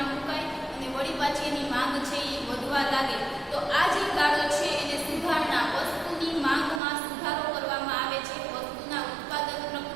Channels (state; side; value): drops out; left; at 6.8 s